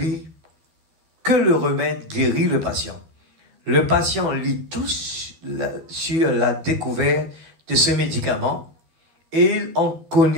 que le remède guérit le patient. Le patient lit tout sur la découverte de ce médicament et il en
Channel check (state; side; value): late; left; 13 ms